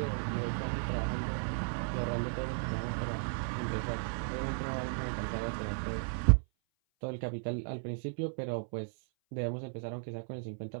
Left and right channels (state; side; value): silent; left; 54 dB below the other